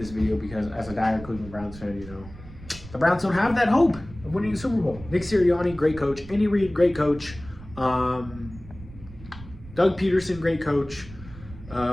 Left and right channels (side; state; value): right; noise; rumble, 16 dB below the sound